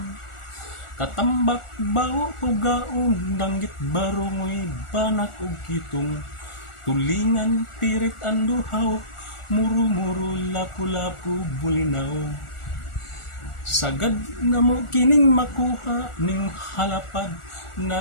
Katambak bao ugaon, danggit barongoy, banak ug kitong. Tulingan pirit anduhaw, muru-muru lapu-lapu bulinaw. Sagad na mo kining makuha ning halapad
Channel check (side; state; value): right; late; 1.4 ms